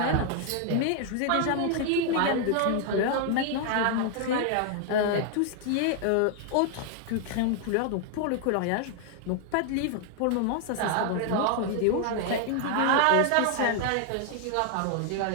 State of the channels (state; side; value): different; both; correlation 0.00